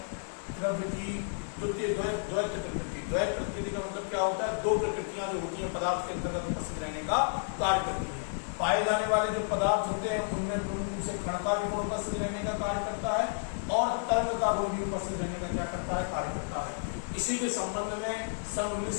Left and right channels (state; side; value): silent; right; digital silence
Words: द्रव्य की द्वैत प्रकृति। द्वैत प्रकृति का मतलब क्या होता है? दो प्रकृतियां जो होती हैं पदार्थ के अंतर्गत उपस्थित रहने का कार्य करती हैं। पाए जाने वाले जो पदार्थ होते हैं उनमें पूर्ण रूप से कण का भी गुण उपस्थित रहने का कार्य करता है और तरंग का गुण भी उपस्थित रहने का क्या करता है? कार्य करता है। इसी के संबंध में सन